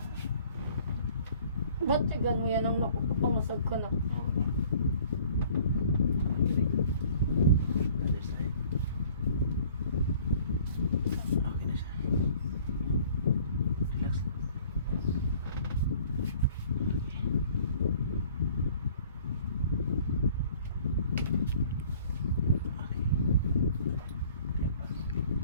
Ba't tigan mo yan ang nakapangusag ko na? Other side. Okay na siya. Relax lang. Okay. Clear pa?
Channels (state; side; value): inverted; both; correlation -0.53